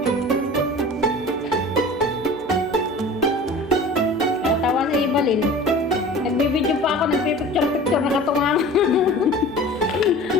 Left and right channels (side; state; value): left; noise; hum, 27 dB below the sound